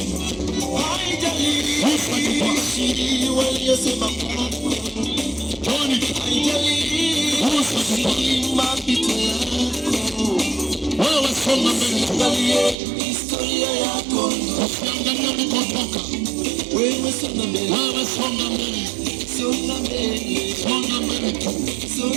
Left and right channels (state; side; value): drops out; left; at 12.8 s